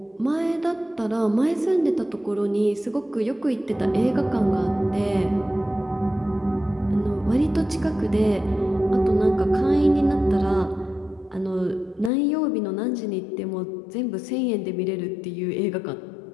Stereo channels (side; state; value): right; drops out; at 12.1 s